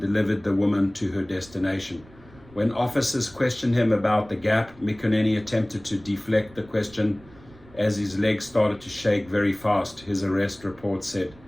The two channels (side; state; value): right; noise; rumble, 24 dB below the sound